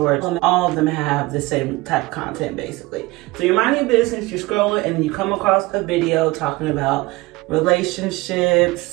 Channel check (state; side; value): quieter; left; 21.3 dB